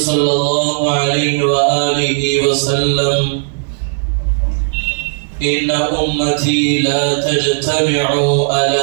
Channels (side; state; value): left; silent; digital silence